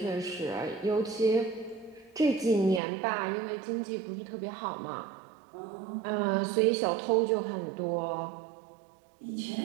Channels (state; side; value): drops out; left; at 2.8 s